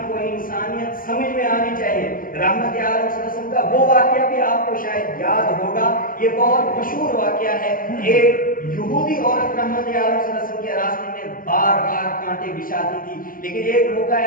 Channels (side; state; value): right; late; 0.41 ms